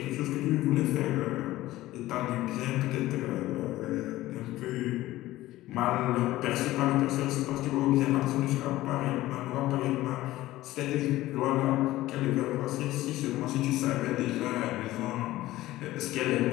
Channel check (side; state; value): right; quieter; 16.4 dB